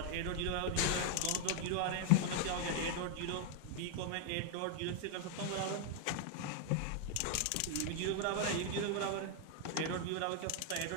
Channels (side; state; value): both; different; correlation 0.00